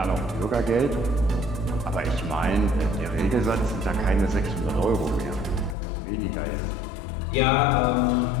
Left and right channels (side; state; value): right; drops out; at 5.8 s